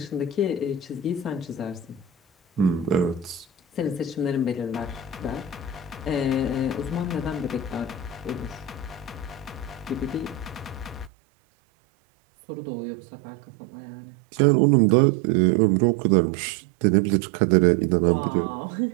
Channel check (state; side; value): drops out; left; at 11.1 s